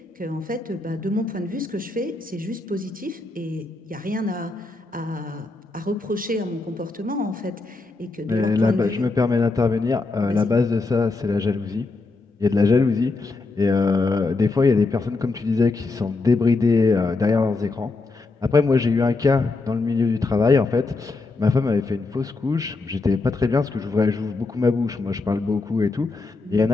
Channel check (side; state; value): right; quieter; 3.5 dB